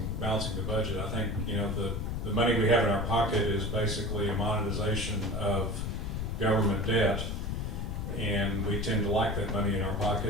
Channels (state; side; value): noise; left; rumble, 2 dB below the sound